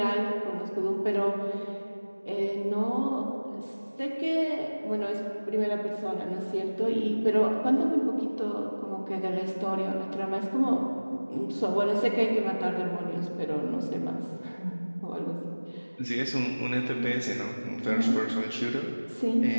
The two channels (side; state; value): both; inverted; correlation -1.00